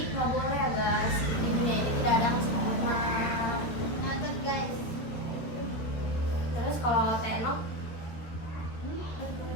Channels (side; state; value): right; late; 13 ms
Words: nggak boleh ya guys. Di dunia ini tidak ada yang sempurna. Nonton guys. Terus kalau Tenok